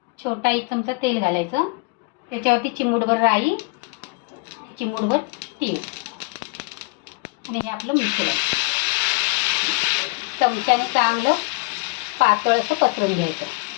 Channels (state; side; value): quieter; right; 27.7 dB